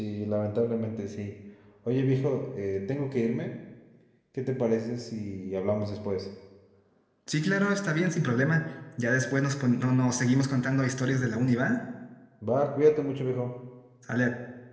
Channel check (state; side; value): identical; both; correlation 1.00